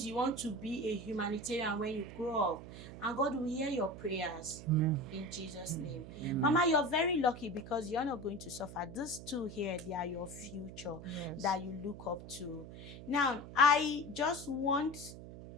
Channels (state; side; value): noise; right; hum, 13 dB below the sound